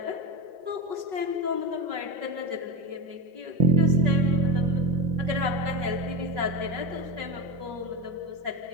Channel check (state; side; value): late; left; 5.3 ms